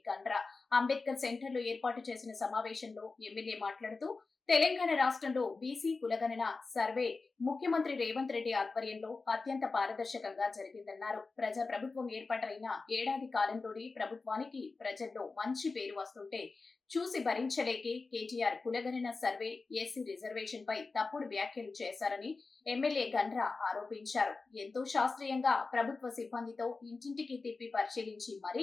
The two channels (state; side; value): quieter; right; 4.0 dB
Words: గండ్ర। అంబేద్కర్ సెంటర్ లో ఏర్పాటు చేసిన సమావేశంలో ఎమ్మెల్యే మాట్లాడుతూ, తెలంగాణ రాష్ట్రంలో బీసీ కులగణన సర్వే ముఖ్యమంత్రి రేవంత్ రెడ్డి ఆధ్వర్యంలో అత్యంత పారదర్శకంగా జరిగిందన్నారు। ప్రజా ప్రభుత్వం ఏర్పాటైన ఏడాది కాలంలోనే ప్రభుత్వానికి ప్రజల్లో మంచి పేరు వస్తుంటే చూసి భరించలేకే కేటీఆర్ కులగణన సర్వే, ఎస్సీ రిజర్వేషన్ పై తప్పుడు వ్యాఖ్యలు చేశారని ఎమ్మెల్యే గండ్ర ఆరోపించారు। ఎంతో శాస్త్రీయంగా ప్రభుత్వ సిబ్బందితో ఇంటింటికి తిప్పి పరిశీలించి